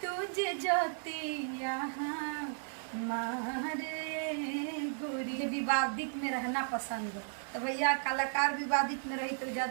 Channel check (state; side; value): silent; left; digital silence